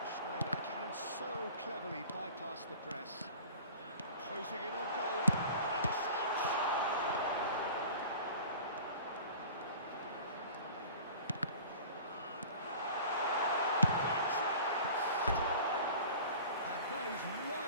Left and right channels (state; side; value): inverted; both; correlation -0.42